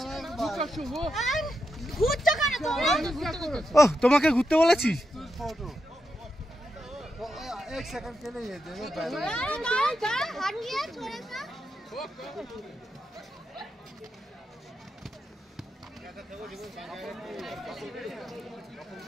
ঘুরছো কেন তোমরা ও তোমাকে ঘুরতে বলেছি फोटो एक सेकंड के लिए ये दे दो हटिए थोड़ा सा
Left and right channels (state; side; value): normal; both; correlation 0.86